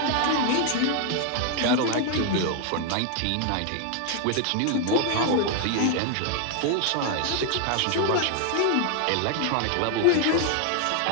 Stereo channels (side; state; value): both; different; correlation 0.00